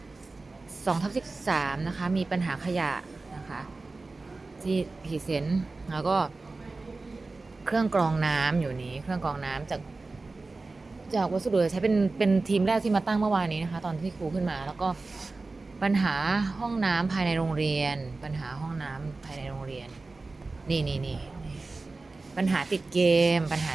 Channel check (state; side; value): quieter; left; 3.5 dB